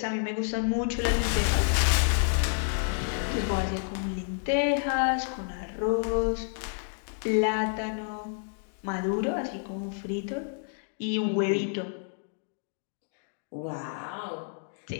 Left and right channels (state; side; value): silent; right; digital silence